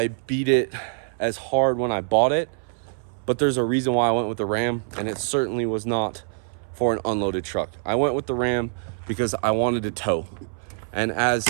beat it as hard when I bought it, but there's a reason why I went with the Ram, and it certainly was not for an unloaded truck. I went with the Ram because I wanted to tow. And as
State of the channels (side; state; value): left; silent; 62 dB below the other